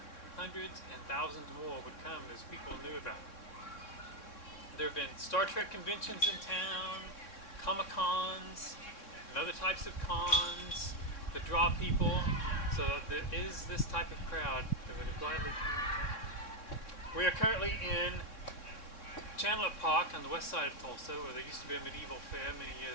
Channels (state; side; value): late; right; 3.6 ms